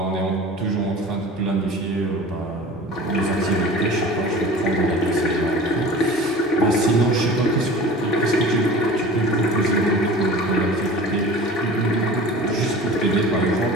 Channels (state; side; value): normal; both; correlation 0.40